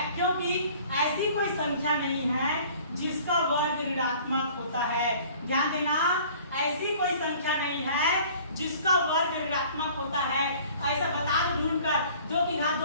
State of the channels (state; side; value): inverted; both; correlation -0.50